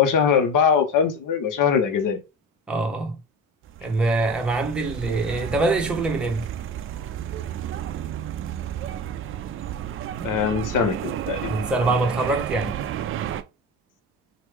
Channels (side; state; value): both; normal; correlation 0.28